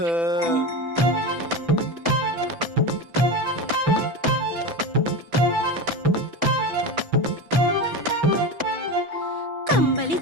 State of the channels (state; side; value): late; left; 6.0 ms